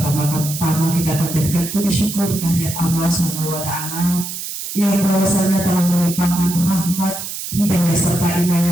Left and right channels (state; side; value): noise; right; hiss, 7 dB below the sound